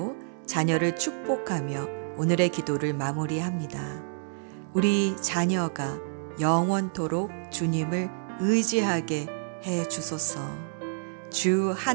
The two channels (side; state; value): left; silent; 59 dB below the other